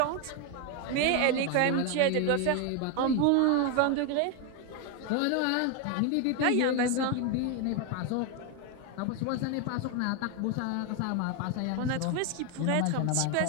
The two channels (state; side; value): different; both; correlation 0.01